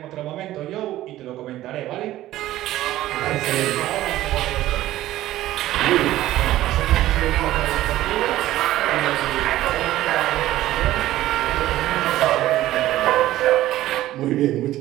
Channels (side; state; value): left; quieter; 14.8 dB